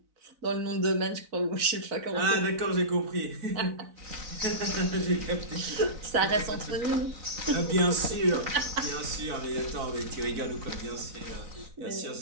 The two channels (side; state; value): left; late; 4.0 ms